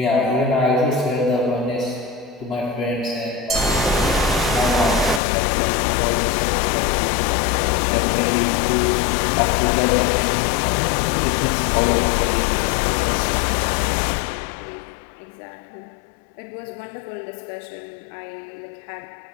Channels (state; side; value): drops out; right; at 5.2 s